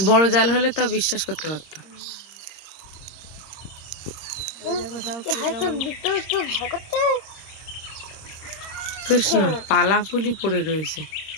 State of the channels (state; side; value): late; right; 26 ms